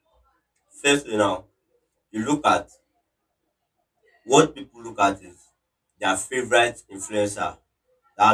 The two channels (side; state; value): both; identical; correlation 1.00